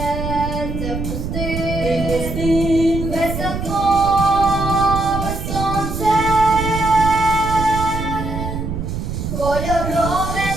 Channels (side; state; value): right; noise; rumble, 5 dB below the sound